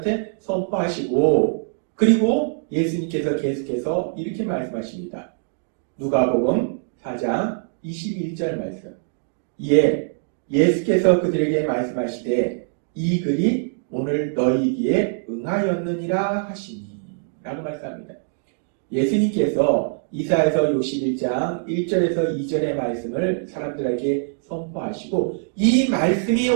선포하시고 그리고 예수님께서 계속해서 이렇게 말씀하십니다. 누가복음 4장 21절 말씀. 이에 예수께서 그들에게 말씀하시되 이 글이 오늘 너희에게 응하였느니라 하시니 라고 말씀합니다. 예수님께서 이사야서 61장 1절에서 2절의 말씀을 사람들에게 선포하시고 이 말씀이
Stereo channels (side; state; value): left; silent; digital silence